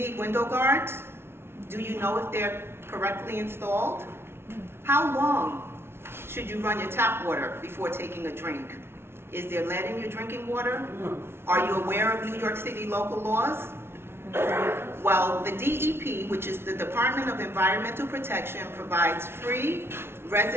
window guards? Do you know if they're correctly installed? How long should you run your tap water before taking a drink? Is there lead in your drinking water? Are you aware of New York City local laws? Well, the DEP, which is the Department of Environmental Protection, provides free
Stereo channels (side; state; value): left; late; 0.12 ms